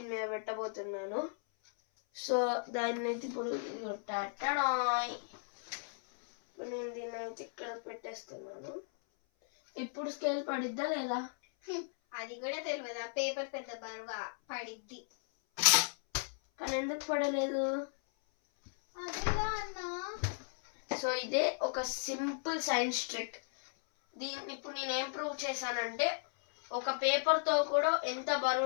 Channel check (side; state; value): right; silent; 54 dB below the other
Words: మీద పెట్టబోతున్నాను. సో దాన్ని అయితే ఇప్పుడు నేను దీన్ని అయితే ఇక్కడ పెట్టేస్తున్నాను. ఇప్పుడు స్కేల్ పడిద్దా లేదా? అది కూడా తెలియదా? పేపర్ పెద్ద బరువా? పడిద్ది. కానీ ఎందుకు పడలేదు? అదేలా అన్నా. సో ఇదే ఒక సింపుల్ సైన్స్ ట్రిక్. దీన్ని ఇప్పుడు నేను ఏం ప్రూవ్ చేశానంటే, ఒక పేపర్తో కూడా ఎంత